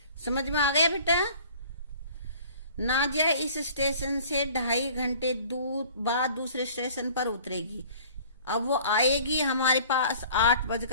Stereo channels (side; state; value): both; inverted; correlation -0.50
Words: समझ में आ गया बेटा? नाजिया इस स्टेशन से 2.5 घंटे दूर बाद दूसरे स्टेशन पर उतरेगी। अब वो आएगी हमारे पास